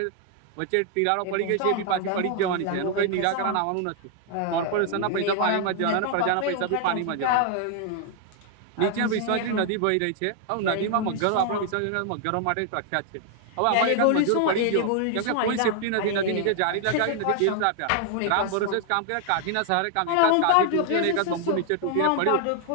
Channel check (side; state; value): both; different; correlation 0.00